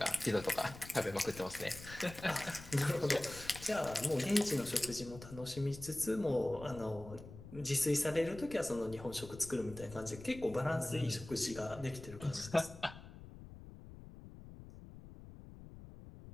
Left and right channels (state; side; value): noise; left; rumble, 15 dB below the sound